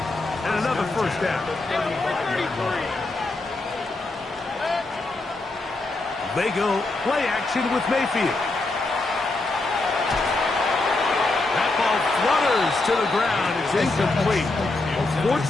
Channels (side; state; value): right; quieter; 3.1 dB